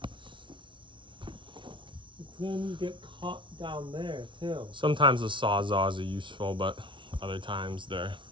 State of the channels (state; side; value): late; left; 0.24 ms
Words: It's gonna get caught down there too. Sometimes the sawzalls are useful, but other times they're